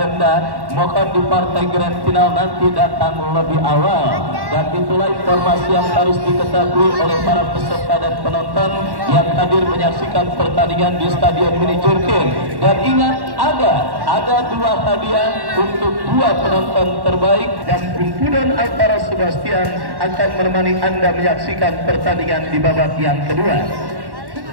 mohon di partai grand final nanti datang lebih awal. Dan itulah informasi yang harus diketahui oleh para peserta dan penonton yang hadir menyaksikan pertandingan di Stadion Mini Jurkin. Dan ingat, ada 2 hadiah untuk 2 penonton terbaik, dan Kumpulan Altara Sebastian akan menemani Anda menyaksikan pertandingan di babak yang kedua.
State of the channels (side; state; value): left; late; 1.1 ms